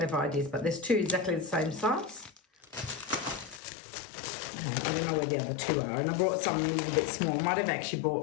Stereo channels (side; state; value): right; drops out; at 3.6 s